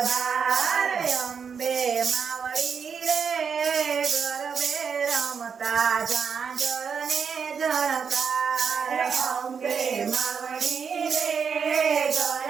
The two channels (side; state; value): left; quieter; 6.5 dB